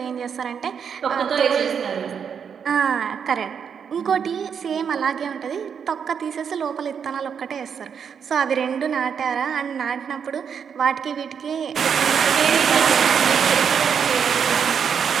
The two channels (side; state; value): left; quieter; 7.2 dB